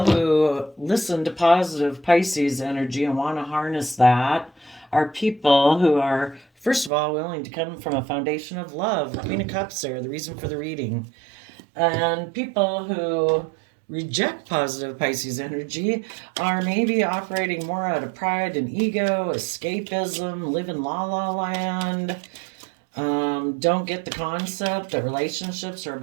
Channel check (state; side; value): drops out; left; at 6.9 s